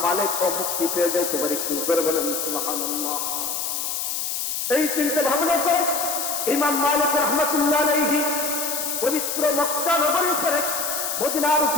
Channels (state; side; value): noise; left; hiss, 2 dB below the sound